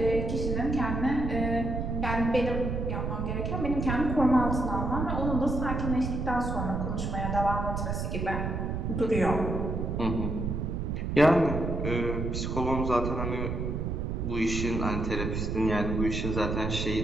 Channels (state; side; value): noise; right; rumble, 2 dB below the sound